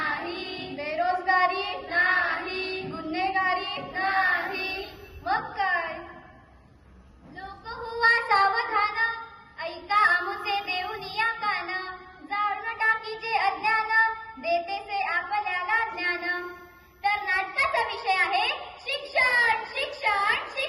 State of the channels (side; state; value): both; identical; correlation 1.00